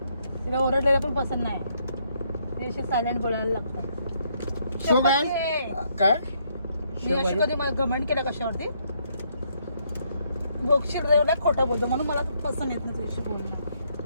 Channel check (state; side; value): inverted; both; correlation -0.72